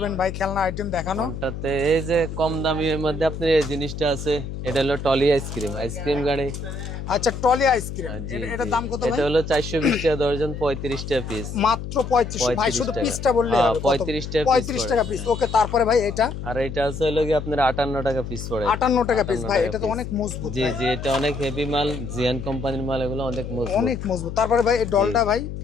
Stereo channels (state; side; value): noise; left; hum, 7 dB below the sound